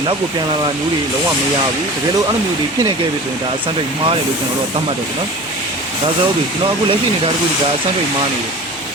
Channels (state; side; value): noise; right; hum, 29 dB below the sound